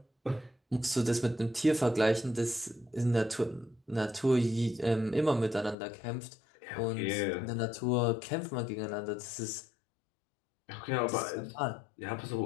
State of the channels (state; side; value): drops out; right; at 5.8 s